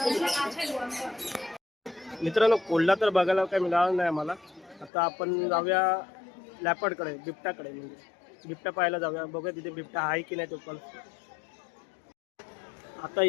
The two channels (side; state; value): right; drops out; at 4.9 s